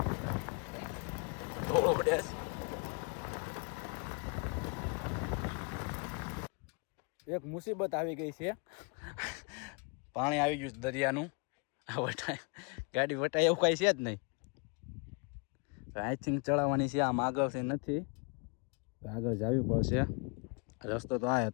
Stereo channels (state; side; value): quieter; right; 34.5 dB